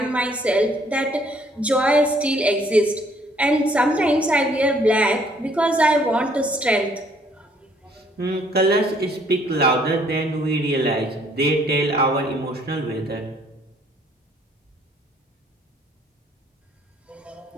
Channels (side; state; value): both; normal; correlation 0.63